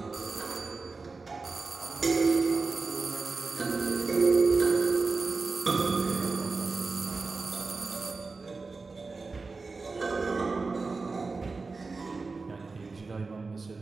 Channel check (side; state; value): left; quieter; 4.0 dB